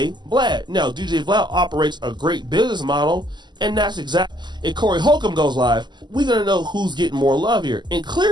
Vlad. Now, DJ Vlad operates a great business model, and that's exactly... If Corey Holcomb goes live, we're going to know who's getting more love here. And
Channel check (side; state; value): left; late; 0.21 ms